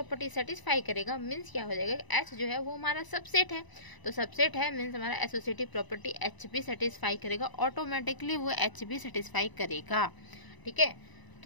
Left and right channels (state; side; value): late; right; 1.0 ms